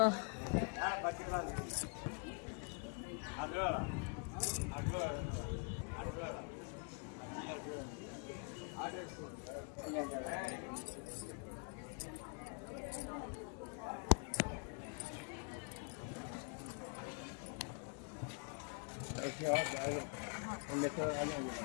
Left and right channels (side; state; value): right; quieter; 38.5 dB